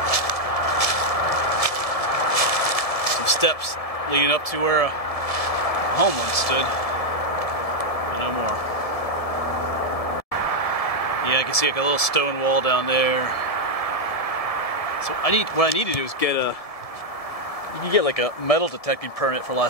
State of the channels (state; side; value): late; right; 1.7 ms